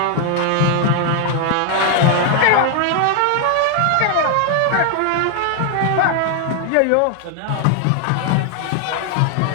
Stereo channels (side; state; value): both; different; correlation 0.00